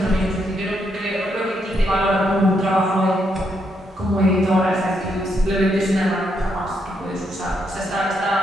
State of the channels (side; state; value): both; normal; correlation 0.78